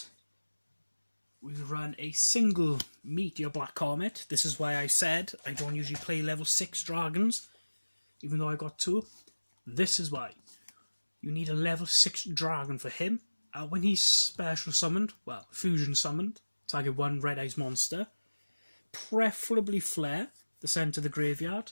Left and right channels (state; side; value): inverted; both; correlation -1.00